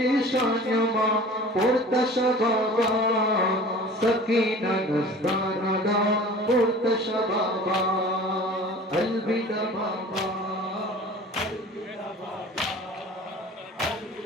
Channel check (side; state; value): both; normal; correlation 0.42